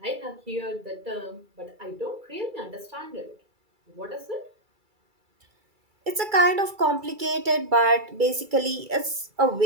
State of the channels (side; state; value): left; late; 2.3 ms